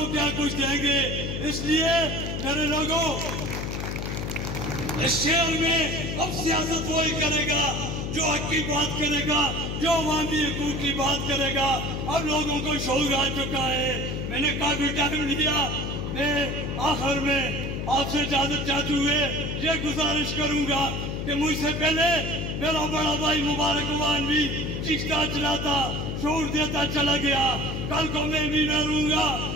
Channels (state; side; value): noise; left; hum, 3 dB below the sound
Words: क्या कुछ देंगे? इसलिए मेरे लोगों, इस शहर में अब सियासत वही करेगा जो हक की बात करेगा, जो अवामी हकूक की बात करेगा। अब लोगों को शौक आ चुका है। मैंने काफी टाइम लिया। मैं आखिर में आपसे इजाजत चाहते हुए ये गुजारिश करूंगा कि मुझसे पहले मेरा बड़ा भाई मुबारक अवान भी चिश्ता चलाता, शोर देता चला गया। कल को मैं भी न रहूंगा,